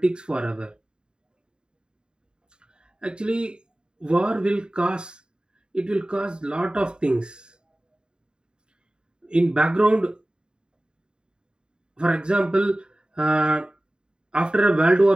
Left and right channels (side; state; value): left; late; 0.049 ms